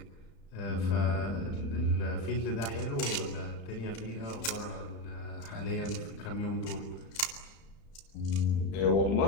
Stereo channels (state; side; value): late; right; 35 ms